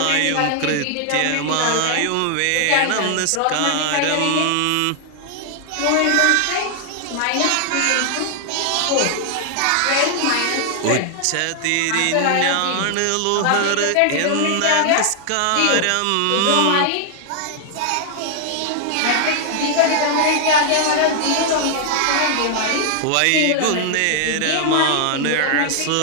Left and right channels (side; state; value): both; different; correlation 0.00